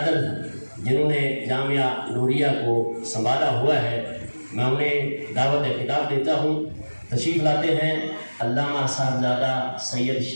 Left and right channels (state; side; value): inverted; both; correlation -1.00